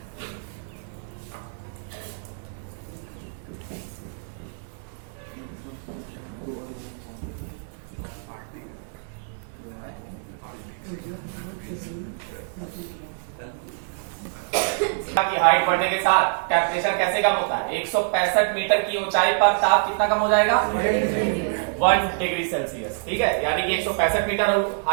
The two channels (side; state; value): left; silent; 58 dB below the other